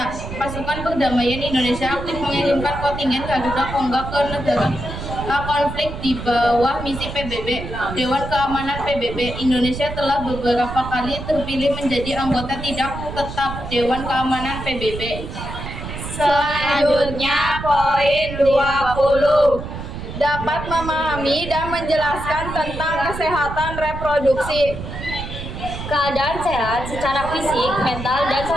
Pasukan Perdamaian Indonesia aktif mengirimkan kontingen Garuda Kongga ke negara konflik di bawah misi PBB. Dewan Keamanan PBB. Indonesia telah beberapa kali terpilih menjadi anggota tidak tetap Dewan Keamanan PBB. Selanjutnya poin 20. Dapat memahami dan menjelaskan tentang kesehatan reproduksi. Keadaan sehat secara fisik, mental, dan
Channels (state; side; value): noise; right; rumble, 8 dB below the sound